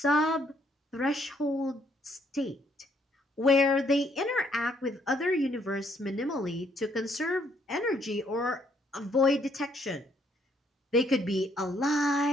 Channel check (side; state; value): both; normal; correlation 0.69